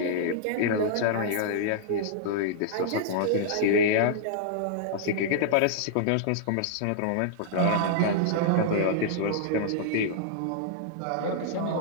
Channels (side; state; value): both; different; correlation -0.01